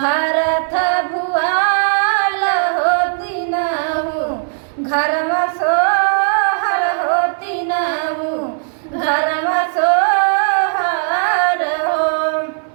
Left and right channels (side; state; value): left; silent; 68 dB below the other